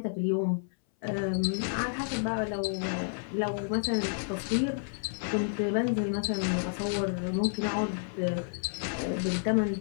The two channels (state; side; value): silent; right; 58 dB below the other